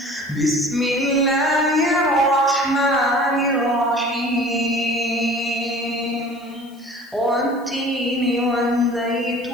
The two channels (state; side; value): noise; left; hiss, 28 dB below the sound